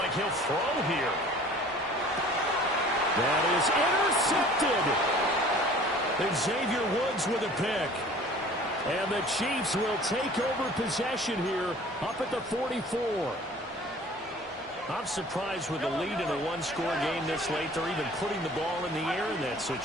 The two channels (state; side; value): normal; both; correlation 0.48